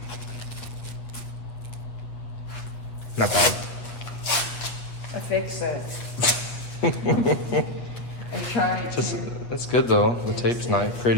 Not bad. I fix it. I'm trying to. That's good though. The tape's nice,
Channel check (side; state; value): right; late; 8.3 ms